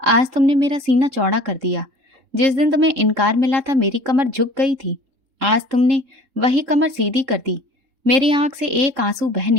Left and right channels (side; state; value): left; late; 3.6 ms